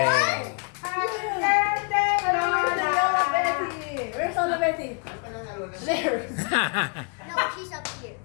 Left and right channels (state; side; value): quieter; right; 38.6 dB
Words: Happy birthday, Lola Betty! Where's Lola Betty? There. No, she's up here.